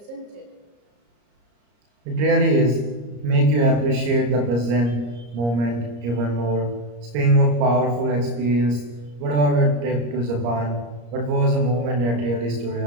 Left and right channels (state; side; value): late; left; 34 ms